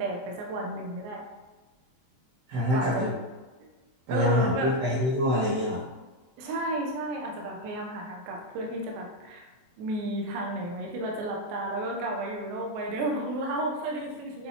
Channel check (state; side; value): late; left; 24 ms